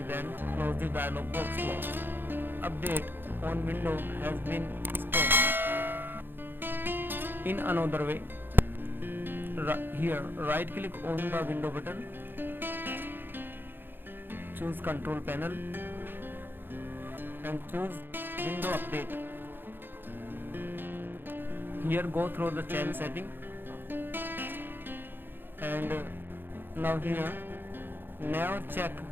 then close the dialog box. Update on window has been stopped. In another way, here right click on the window button, choose control panel and choose window update. Here go through the change setting and now here never check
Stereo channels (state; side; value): late; left; 0.098 ms